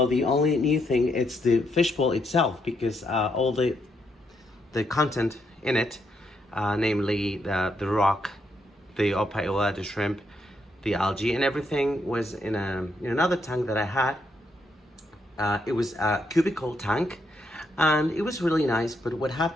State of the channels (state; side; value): normal; both; correlation 0.77